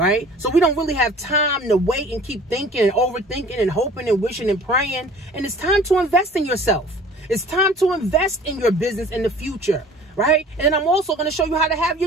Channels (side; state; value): both; normal; correlation 0.48